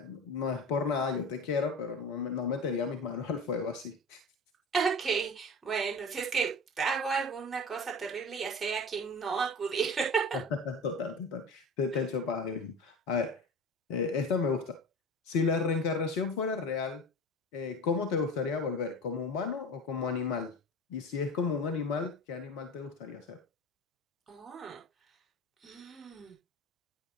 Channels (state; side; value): normal; both; correlation 0.32